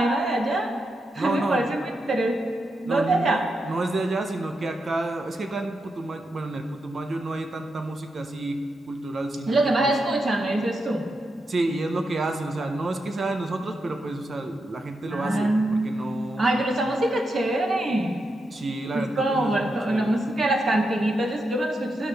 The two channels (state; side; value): normal; both; correlation 0.85